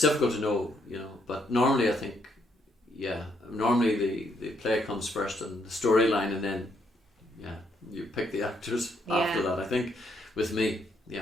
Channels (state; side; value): normal; both; correlation 0.73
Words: difficult to know, you know. But normally I think, the play comes first and the storyline, and then, you pick the actors after that. I think with me,